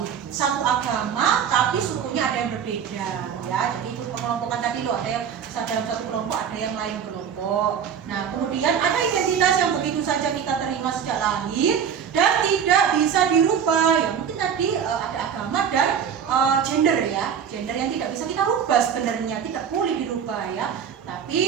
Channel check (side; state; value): left; quieter; 7.8 dB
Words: satu agama, tapi sukunya ada yang berbeda. Ya, jadi itu pengelompokan tadi loh, ada yang dalam satu kelompok, ada yang lain kelompok. Nah, kemudian ada identitas yang begitu saja kita terima sejak lahir dan tidak bisa dirubah. Ya mungkin tadi ada agama dan gender ya, gender yang tidak bisa kita rubah sebenarnya, tidak boleh dirubah ya. Tapi